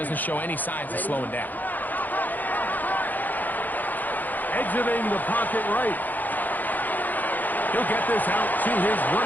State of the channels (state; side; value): late; right; 0.084 ms